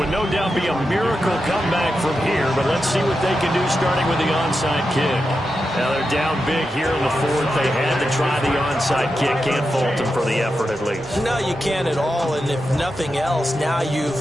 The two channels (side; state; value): both; normal; correlation 0.88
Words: no doubt be a miracle comeback from here, but let's see what they can do starting with the onside kick. Now they're down big here in the 4th. They had to try the onside kick. Can't fault them for the effort at least. No, you can't at all. And if nothing else, now